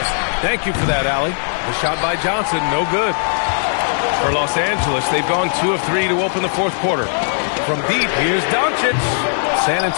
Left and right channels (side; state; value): right; silent; digital silence